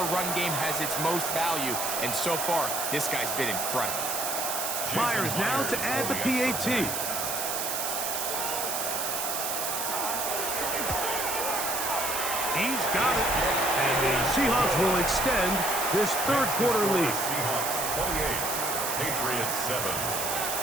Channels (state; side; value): noise; right; hiss, 1 dB below the sound